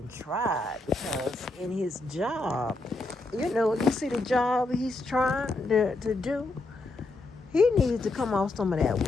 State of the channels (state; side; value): quieter; right; 3.0 dB